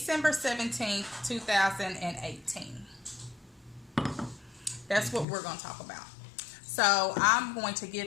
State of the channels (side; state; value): right; drops out; at 5.2 s